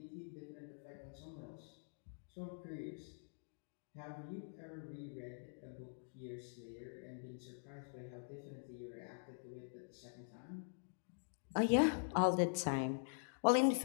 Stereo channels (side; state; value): right; silent; digital silence